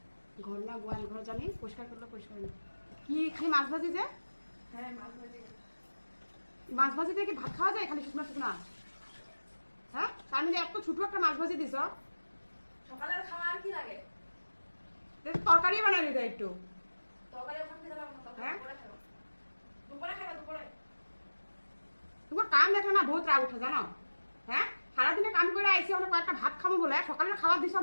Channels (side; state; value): both; inverted; correlation -1.00